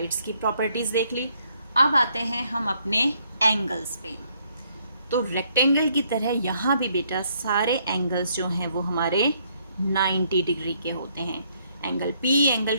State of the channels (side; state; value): both; inverted; correlation -0.69